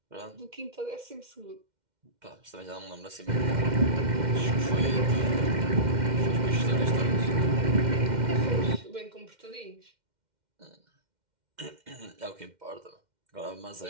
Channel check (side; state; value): left; late; 2.1 ms